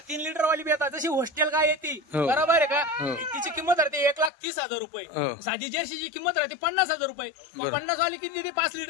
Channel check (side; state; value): right; drops out; at 4.3 s